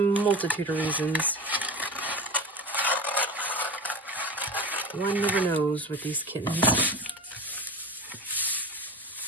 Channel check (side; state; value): both; normal; correlation 0.29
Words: of reasons. One never knows with these kittens.